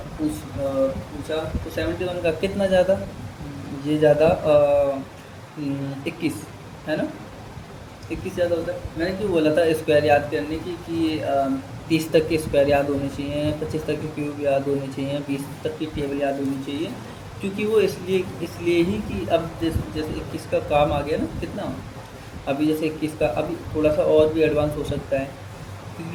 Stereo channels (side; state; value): both; identical; correlation 1.00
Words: पूछा, तो 71 का कितना ज़्यादा? ये ज़्यादा 21, है ना, 21 ज़्यादा होता है। मैंने क्यों बोला था स्क्वायर याद करने की, कि 30 तक के स्क्वायर याद होने चाहिए, 25 तक के क्यूब याद होने चाहिए, 20 तक की टेबल याद होनी चाहिए, क्योंकि वो इसलिए ही कि अब जैसे 21 का काम आ गया ना, कितना अभी जैसे 21 का अभी थोड़ा सा और भी एडवांस हो सकता है,